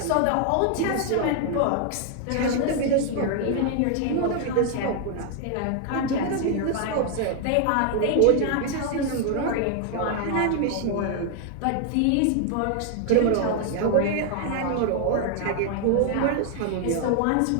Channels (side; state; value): both; different; correlation 0.00